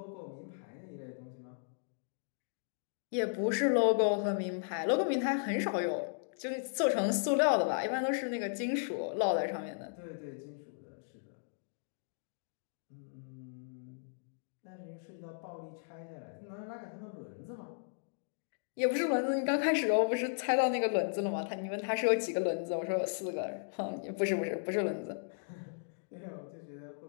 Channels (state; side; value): silent; right; digital silence